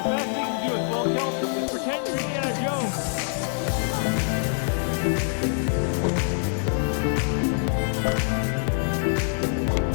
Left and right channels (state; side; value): silent; right; 62 dB below the other